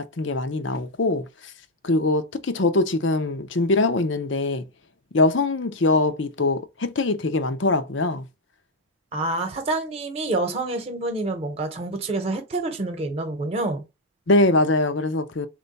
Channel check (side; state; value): both; normal; correlation 0.00